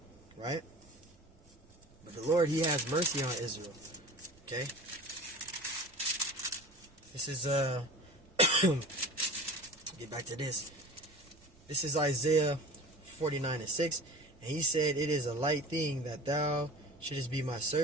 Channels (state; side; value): noise; right; rumble, 29 dB below the sound